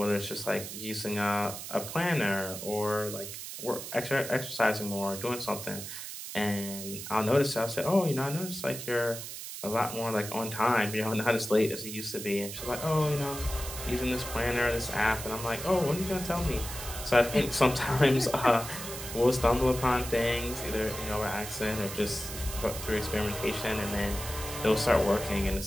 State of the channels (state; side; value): noise; right; hiss, 9 dB below the sound